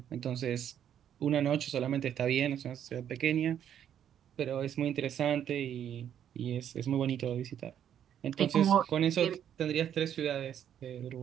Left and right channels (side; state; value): left; quieter; 9.6 dB